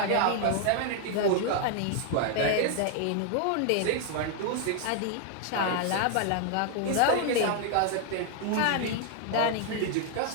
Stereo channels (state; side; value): different; both; correlation 0.00